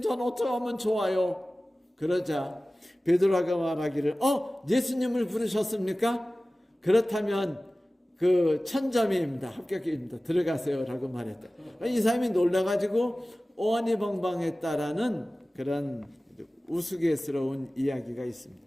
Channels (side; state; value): both; normal; correlation 0.97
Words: 전 어떻게 하면 좋아요? 그러자 베드로가 말하기를 예수님을 부르셨습니까? 그렇다면 1000점입니다. 합격입니다. 들어가세요 라고 말했다. 이 사람이 놀라가지고 오한이벙벙했다라는 그런 우스갯스러운 이야기가 있습니다.